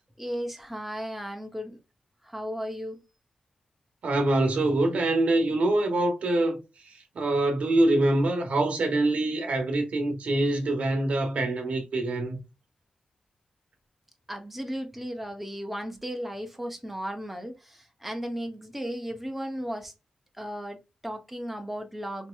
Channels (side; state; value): both; normal; correlation 0.89